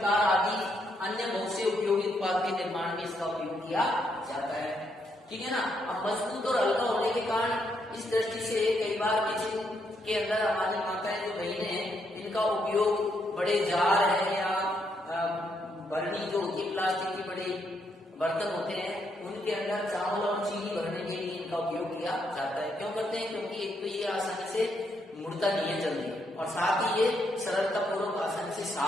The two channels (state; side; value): normal; both; correlation 0.76